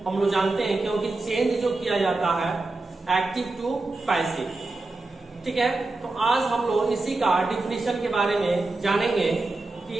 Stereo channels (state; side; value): quieter; left; 3.2 dB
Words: हम लोग जानते हैं, क्योंकि चेंज जो किया जाता है एक्टिव टू पैसिव। ठीक है, तो आज हम लोग इसी का डिफिनेशन के बारे में जानेंगे कि